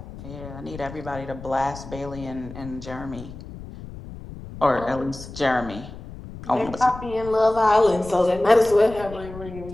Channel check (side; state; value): left; noise; rumble, 13 dB below the sound